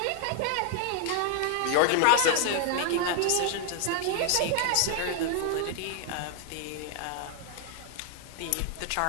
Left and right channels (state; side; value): different; both; correlation 0.00